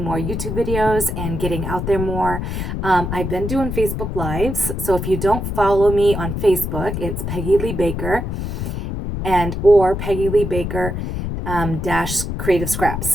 more YouTube videos and getting out there more. I've been doing Facebook Lives, so if you don't follow me on Facebook, it's Peggy Lee Baker or Peggy Lee Baker dash Creative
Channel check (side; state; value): left; noise; rumble, 4 dB below the sound